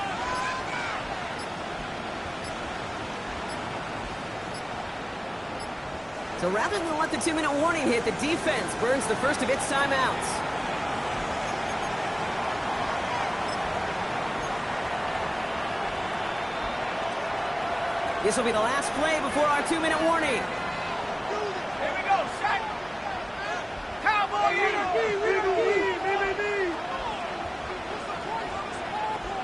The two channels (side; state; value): both; identical; correlation 1.00